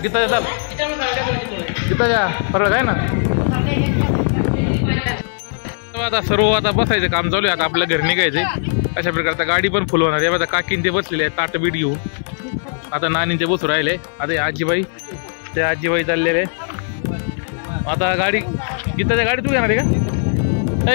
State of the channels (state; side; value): silent; right; digital silence